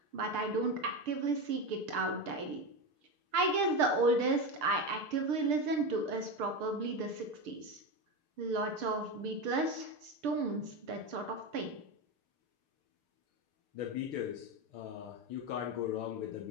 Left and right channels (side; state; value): left; late; 6.7 ms